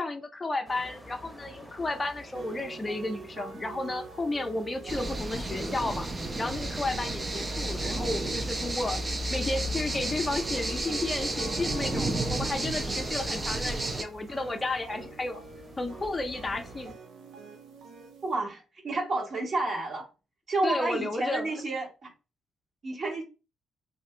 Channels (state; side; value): normal; both; correlation 0.87